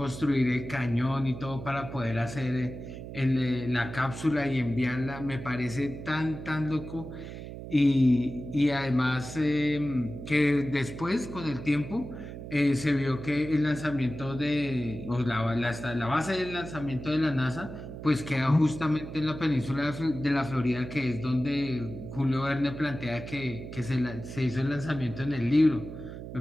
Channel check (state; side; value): noise; right; hum, 10 dB below the sound